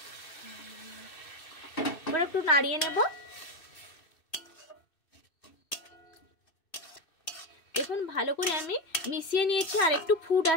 এবার একটু নাড়িয়ে নেব। দেখুন, ভালো করে আমি মিশিয়ে নিয়েছি, আর একটু ফুট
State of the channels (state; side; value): late; right; 2.6 ms